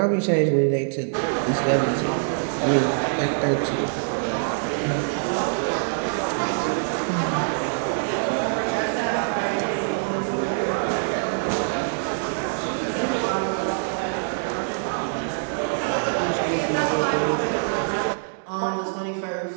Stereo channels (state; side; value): silent; left; digital silence